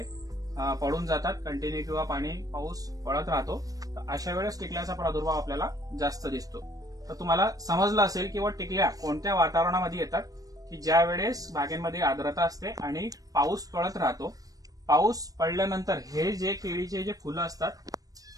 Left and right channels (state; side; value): late; left; 0.18 ms